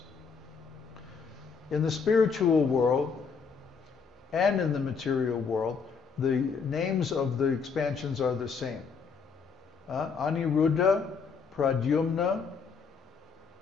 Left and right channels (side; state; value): right; quieter; 5.6 dB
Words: In the spiritual world and in the material world, the names of the expansions are the same. Aniruddha, Pradyumna,